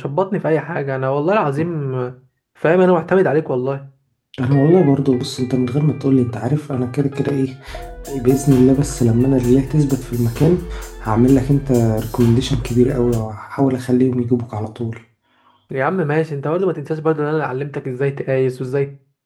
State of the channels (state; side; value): identical; both; correlation 1.00